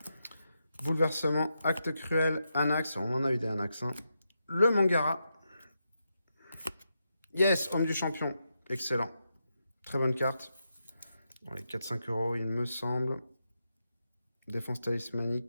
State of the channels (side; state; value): both; inverted; correlation -0.85